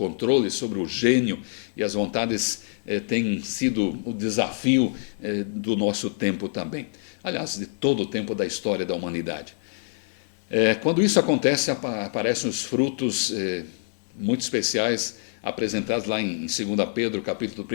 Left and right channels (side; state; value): right; silent; digital silence